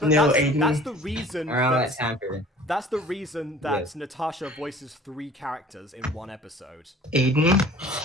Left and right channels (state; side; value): normal; both; correlation 0.48